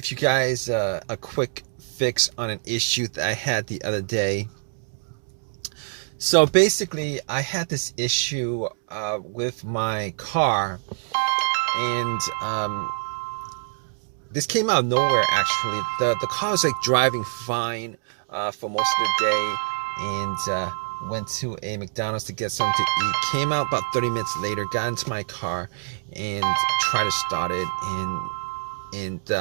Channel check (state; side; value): silent; left; digital silence